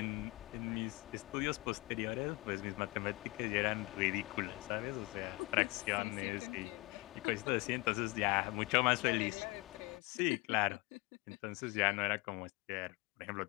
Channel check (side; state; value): right; quieter; 24.6 dB